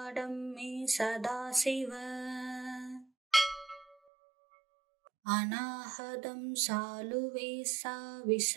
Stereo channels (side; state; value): left; drops out; at 4.0 s